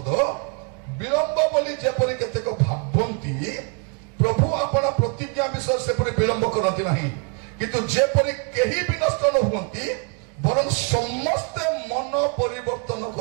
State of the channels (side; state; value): left; quieter; 36.8 dB